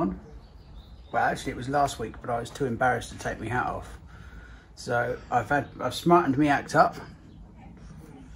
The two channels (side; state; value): both; identical; correlation 1.00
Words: Well, actually it was last week, but I was too embarrassed to take my hat off. So I've smartened me act up.